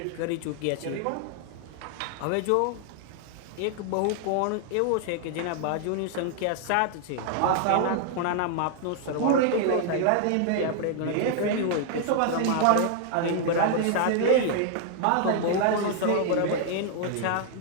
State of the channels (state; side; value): different; both; correlation 0.00